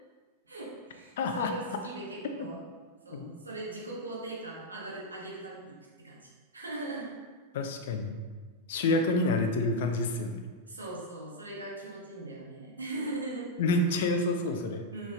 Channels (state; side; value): normal; both; correlation -0.02